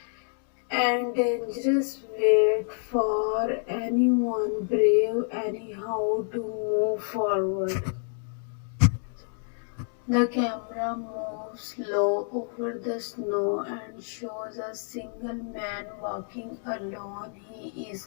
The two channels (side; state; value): right; silent; 56 dB below the other